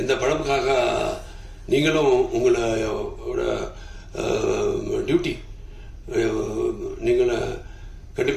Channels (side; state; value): both; identical; correlation 1.00